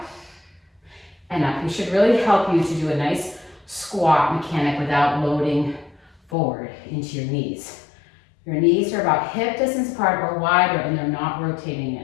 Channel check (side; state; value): right; drops out; at 6.2 s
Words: and up. It should really help you to do a nice squat mechanic without loading forward into your knees. Your knees are about hip distance apart or wider and they're not rotating